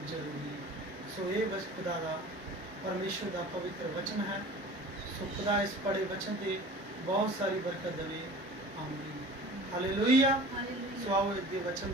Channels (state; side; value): normal; both; correlation 0.41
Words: ਜ਼ਰੂਰੀ ਹੈ। ਸੋ ਇਹ ਬਸ ਖੁਦਾ ਦਾ, ਪਰਮੇਸ਼ਰ ਦਾ ਪਵਿੱਤਰ ਵਚਨ ਹੈ। ਸੋ ਖੁਦਾ ਇਸ ਪੜੇ ਵਚਨ ਤੇ ਬਹੁਤ ਸਾਰੀ ਬਰਕਤ ਦੇਵੇ। ਆਮੀਨ। ਹਾਲੇਲੂਇਆ। ਸੋ ਆਓ ਇਸ ਦੇ ਵਚਨ